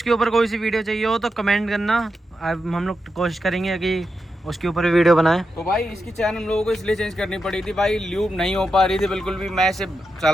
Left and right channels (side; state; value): both; normal; correlation 0.87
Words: ऊपर कोई सी वीडियो चाहिए हो तो कमेंट करना, हम लोग कोशिश करेंगे कि उसके ऊपर भी वीडियो बनाएं। तो भाई इसकी चैन हम लोगों को इसलिए चेंज करनी पड़ी थी भाई, ल्यूब नहीं हो पा रही थी बिल्कुल भी। मैं इसे